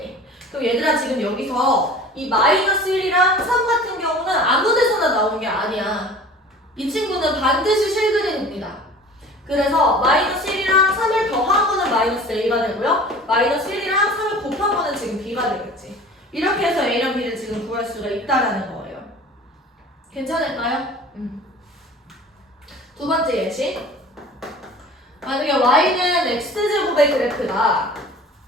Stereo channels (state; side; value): normal; both; correlation 0.43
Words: 그럼 얘들아 지금 여기서 이 -1이랑 3 같은 경우는 아무 데서나 나온 게 아니야. 이 친구는 반드시 실그림입니다. 그래서 -1이랑 3을 더한 거는 -a가 되고요. -1이랑 3을 곱한 거는 지금 b가 되겠지. 이렇게 해서 a랑 b를 지금 구할 수가 있다라는 거예요. 괜찮을까요? 두 번째 예시. 만약에 y는 x제곱의 그래프다.